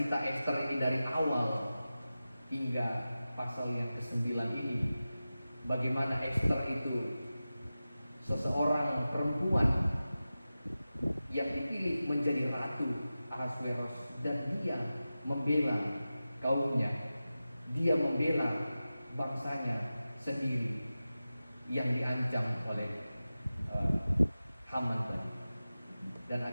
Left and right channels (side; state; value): both; inverted; correlation -0.95